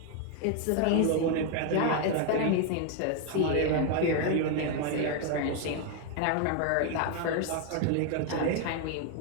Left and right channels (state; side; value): different; both; correlation 0.01